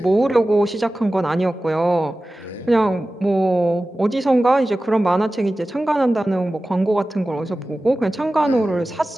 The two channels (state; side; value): normal; both; correlation 0.96